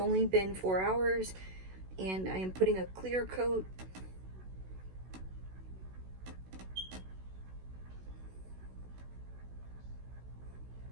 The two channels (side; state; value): left; late; 16 ms